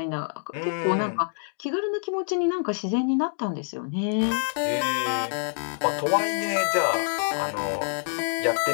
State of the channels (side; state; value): right; silent; digital silence